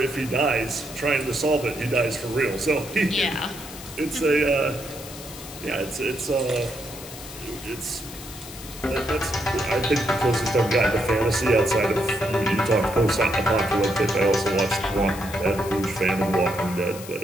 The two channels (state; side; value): noise; left; hiss, 14 dB below the sound